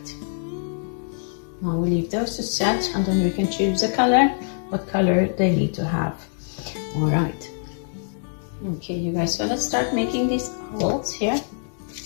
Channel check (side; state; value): right; silent; digital silence